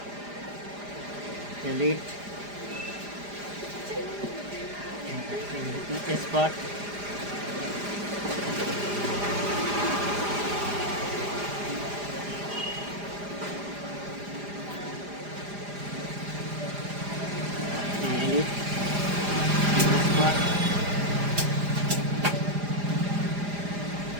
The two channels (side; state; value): left; late; 4.9 ms